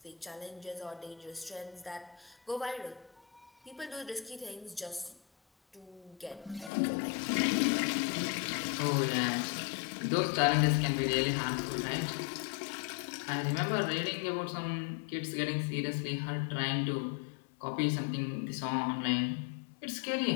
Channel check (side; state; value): right; drops out; at 6.7 s